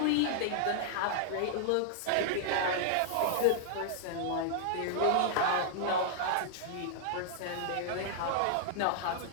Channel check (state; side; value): different; both; correlation -0.01